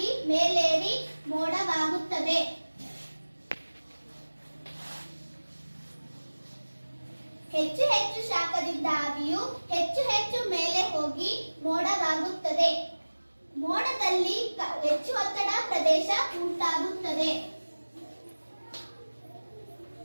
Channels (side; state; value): both; inverted; correlation -1.00